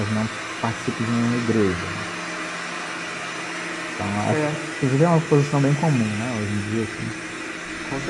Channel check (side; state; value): both; identical; correlation 1.00